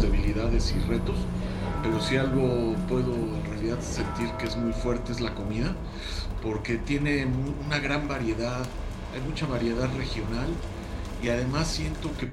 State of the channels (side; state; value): both; identical; correlation 1.00